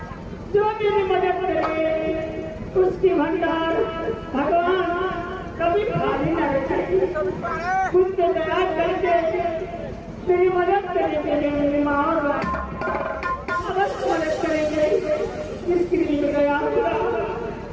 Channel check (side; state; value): both; identical; correlation 1.00